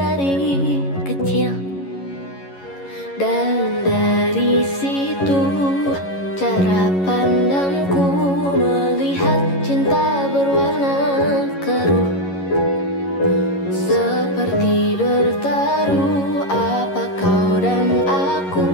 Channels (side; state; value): right; late; 11 ms